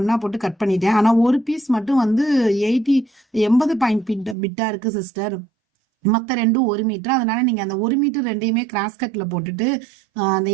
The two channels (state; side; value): drops out; left; at 4.4 s